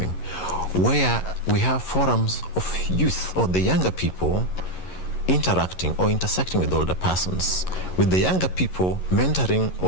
where we have forums of youth or the younger people interacting or intersecting with older persons, with the younger people mentoring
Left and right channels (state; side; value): late; right; 11 ms